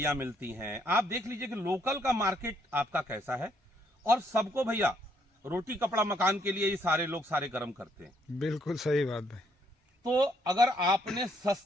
मिलती हैं। आप देख लीजिए कि लोकल का मार्केट आपका कैसा है, और सबको भैया रोटी कपड़ा मकान के लिए ये सारे लोग सारे कर्म करते हैं। बिल्कुल सही बात भाई। तो अगर आपने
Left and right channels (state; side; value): normal; both; correlation 0.70